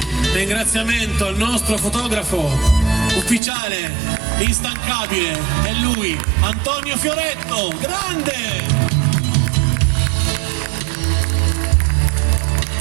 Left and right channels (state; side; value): drops out; left; at 3.4 s